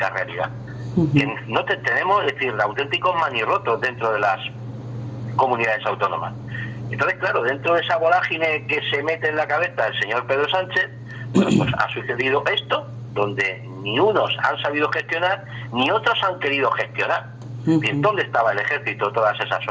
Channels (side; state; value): both; identical; correlation 1.00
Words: realidad. Que no tenemos, es decir, auténticos manirrotos dentro de las comunidades autónomas. Entonces, claro, dentro de esa vorágine que se mete en la cabeza el señor Pedro Sánchez, pues ha sucedido esto, donde ni unos han sabido gestionar, ni otros han querido gestionar. ¿Dónde estaba el ejército todas esas